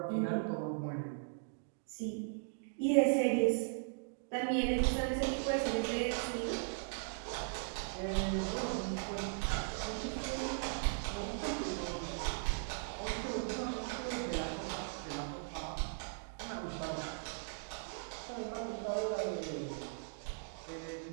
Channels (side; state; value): left; silent; digital silence